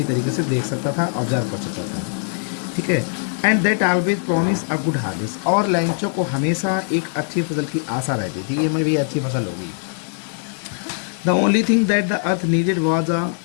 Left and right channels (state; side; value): silent; right; 65 dB below the other